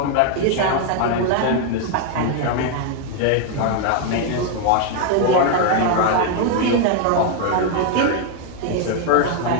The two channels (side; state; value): both; different; correlation 0.00